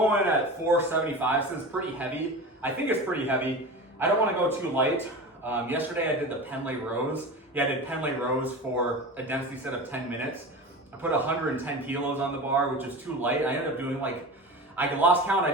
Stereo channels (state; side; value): normal; both; correlation 0.30